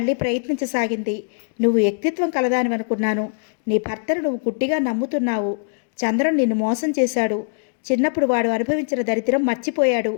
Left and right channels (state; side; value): silent; right; digital silence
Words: ప్రయత్నించసాగింది. నువ్వు వ్యక్తిత్వం కలదానివనుకున్నాను. నీ భర్తను నువ్వు గుడ్డిగా నమ్ముతున్నావు. చంద్రన్ నిన్ను మోసం చేశాడు. చిన్నప్పుడు వాడు అనుభవించిన దరిద్రం మర్చిపోయాడు.